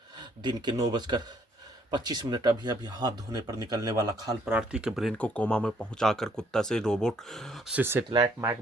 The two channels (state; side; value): normal; both; correlation 0.66